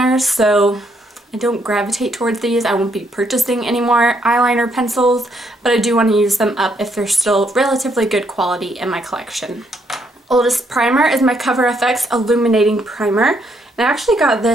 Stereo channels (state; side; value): normal; both; correlation 0.73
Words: so I don't gravitate towards these. I won't be purchasing any more eyeliner pencils, but I do want to use them up if they're still relatively good quality in my collection. Oldest primer is my Cover FX Illuminating Primer. And I actually got